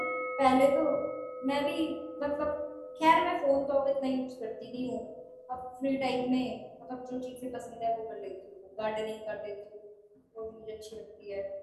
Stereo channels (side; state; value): both; identical; correlation 1.00